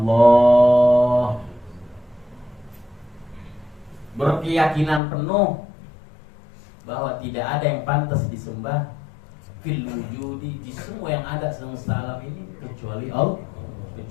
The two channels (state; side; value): drops out; right; at 5.0 s